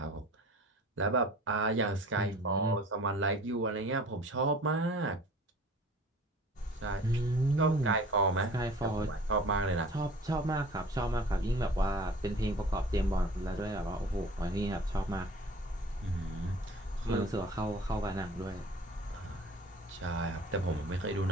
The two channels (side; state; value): both; normal; correlation 0.46